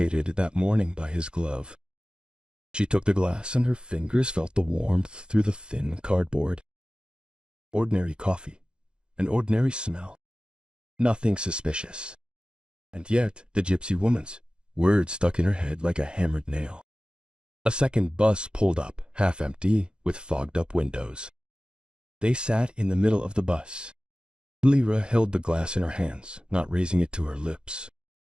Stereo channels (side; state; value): left; late; 0.050 ms